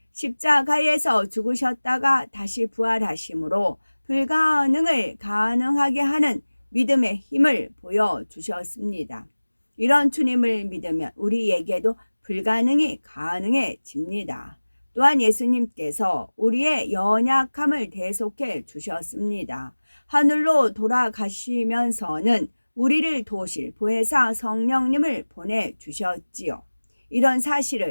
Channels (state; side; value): inverted; both; correlation -1.00